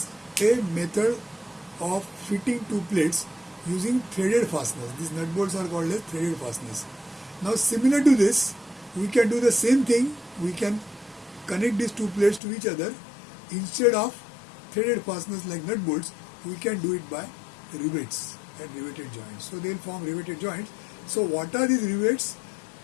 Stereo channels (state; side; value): drops out; right; at 12.4 s